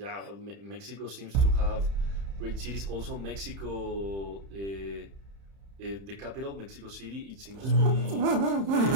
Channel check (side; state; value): left; late; 30 ms